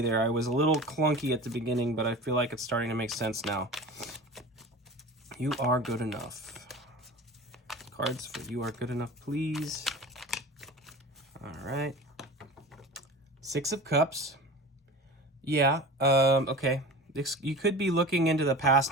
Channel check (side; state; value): both; normal; correlation 0.35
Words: there. I was a little clunky at the beginning, but I feel like it's starting to make sense now. You are good enough. Cards for You Are Good Enough, please. All right. 6 of Cups. Yeah, okay. You could be looking into the